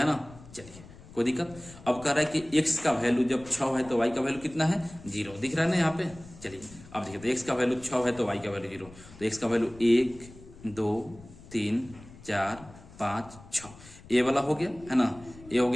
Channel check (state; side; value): noise; left; rumble, 19 dB below the sound